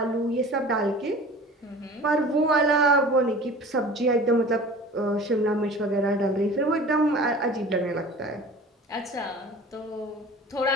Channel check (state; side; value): normal; both; correlation 0.41